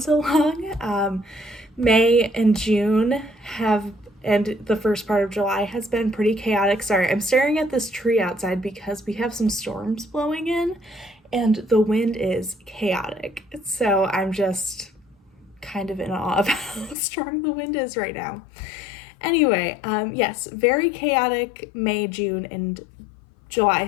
so long. May and June and the first part of July has been pretty chaotic. Sorry, I'm staring at this tree outside because we have some storms blowing in and the wind is chaotic. So I'm just kind of in awe of how strong the wind is right now. Anyway, yes, very chaotic May, June, and July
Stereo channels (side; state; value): right; drops out; at 16.9 s